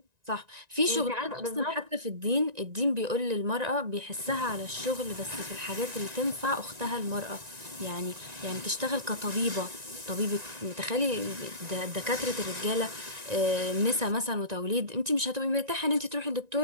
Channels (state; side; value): late; left; 1.9 ms